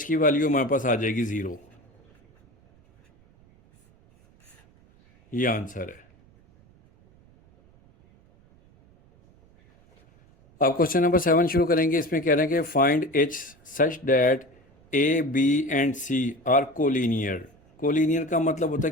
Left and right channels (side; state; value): right; noise; rumble, 30 dB below the sound